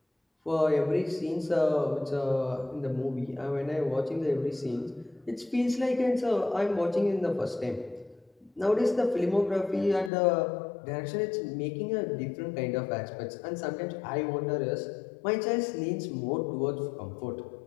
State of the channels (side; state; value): right; drops out; at 10.1 s